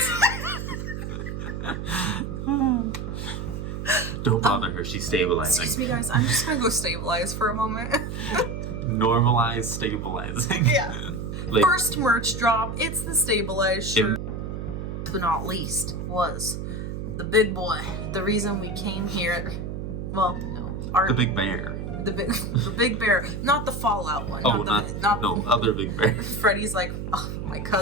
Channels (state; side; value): noise; right; hum, 6 dB below the sound